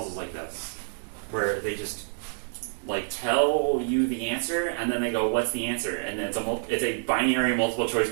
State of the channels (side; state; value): left; silent; 60 dB below the other